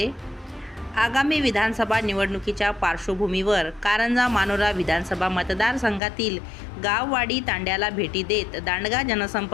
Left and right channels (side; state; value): right; drops out; at 6.0 s